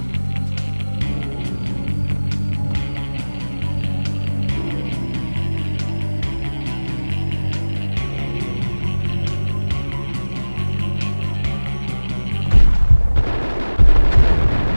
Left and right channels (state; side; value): inverted; both; correlation -1.00